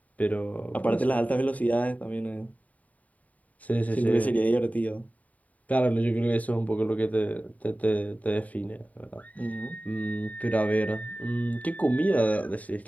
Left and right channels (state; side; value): late; right; 0.071 ms